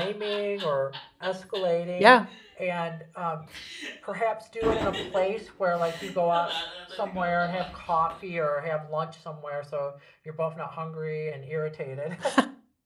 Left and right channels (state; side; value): identical; both; correlation 1.00